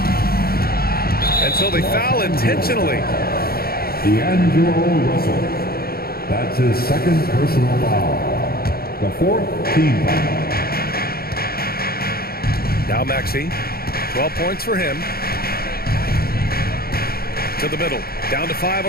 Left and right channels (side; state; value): right; late; 0.44 ms